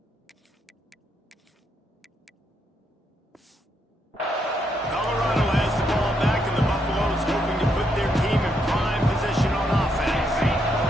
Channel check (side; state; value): both; normal; correlation 0.77